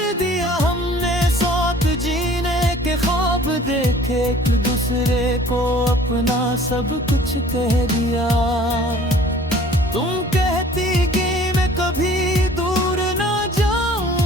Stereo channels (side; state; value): both; normal; correlation 0.50